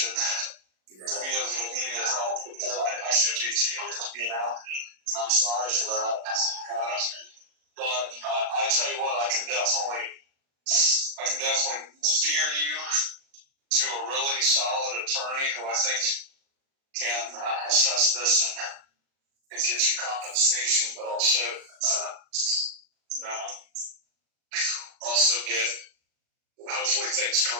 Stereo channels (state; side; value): late; left; 37 ms